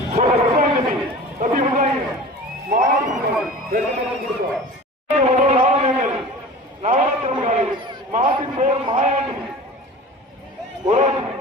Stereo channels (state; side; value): normal; both; correlation 0.38